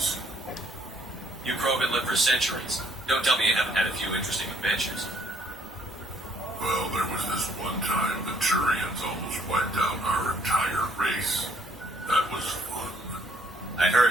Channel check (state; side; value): normal; both; correlation 0.65